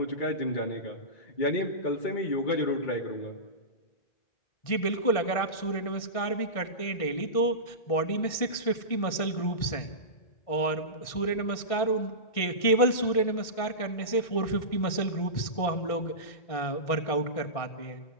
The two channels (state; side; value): late; right; 1.6 ms